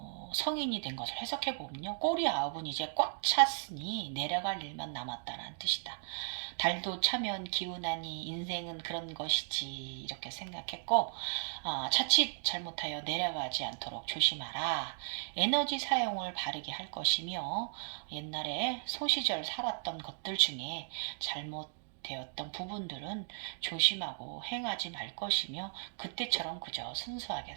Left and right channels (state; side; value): silent; left; digital silence